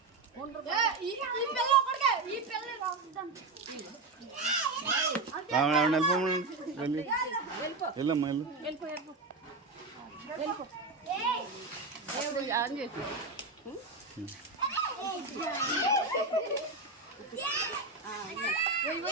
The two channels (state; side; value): quieter; left; 3.6 dB